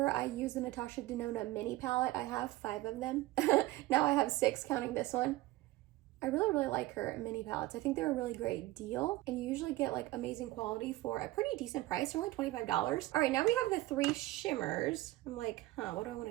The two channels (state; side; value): quieter; left; 17.9 dB